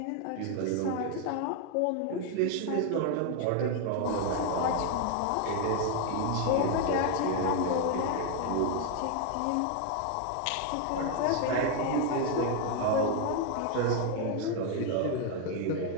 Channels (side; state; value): both; different; correlation 0.01